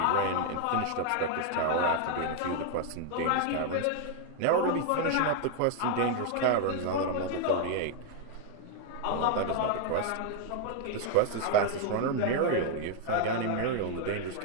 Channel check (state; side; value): different; both; correlation 0.00